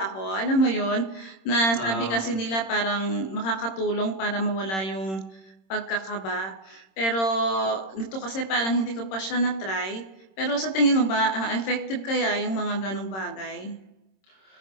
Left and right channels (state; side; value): late; right; 26 ms